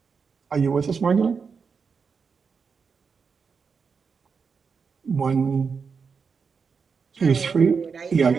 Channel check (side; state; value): left; quieter; 5.6 dB